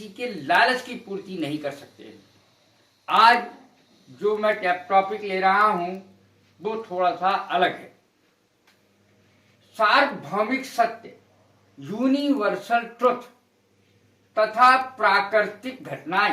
के लालच की पूर्ति नहीं कर सकते। आज जो मैं टॉपिक ले रहा हूं वो थोड़ा सा अलग है। सार्वभौमिक सत्य, यूनिवर्सल ट्रुथ तथा प्राकृतिक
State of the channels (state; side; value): identical; both; correlation 1.00